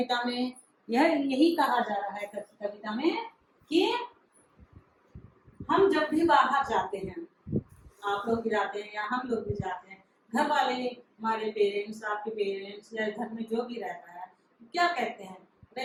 में? यही कहा जा रहा है कविता में कि हम जब भी बाहर जाते हैं, आप लोग भी जाते हैं या हम लोग भी जाते हैं, घर वाले हमारे पेरेंट्स, आपके पेरेंट्स या घर में जो भी रहता है, क्या कहते हैं? अरे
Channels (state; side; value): identical; both; correlation 1.00